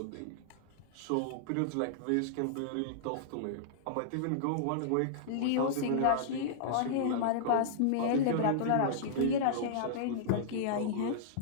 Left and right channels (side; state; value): both; different; correlation -0.02